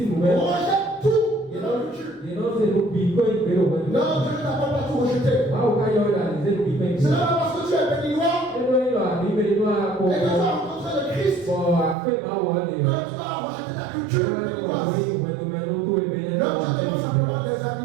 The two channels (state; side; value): drops out; left; at 12.0 s